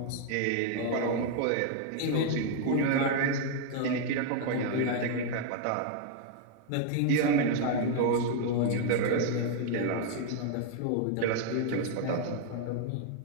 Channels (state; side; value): different; both; correlation 0.00